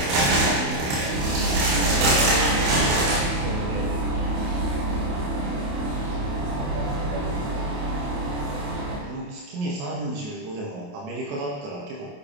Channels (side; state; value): left; late; 28 ms